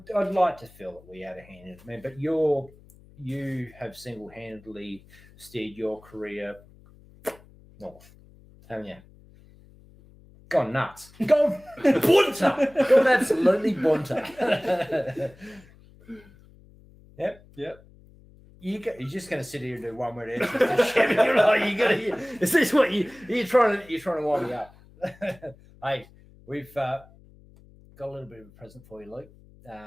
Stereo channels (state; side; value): noise; left; hum, 25 dB below the sound